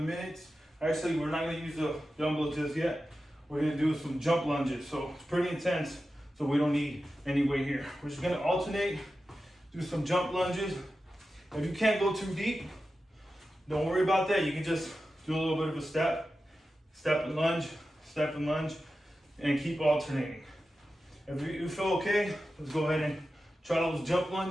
minutes. Actually, we're not gonna use the dumbbells just yet. We're gonna do some jump lunges. So it's pretty intense, so we don't need any weight here. We're just gonna alternate, do some jump lunges. If you can't go too deep, don't worry about that. You can just do a little bit of a step and lunge, and keep alternating. If you feel okay, let's go ahead and try those jump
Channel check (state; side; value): normal; both; correlation 0.92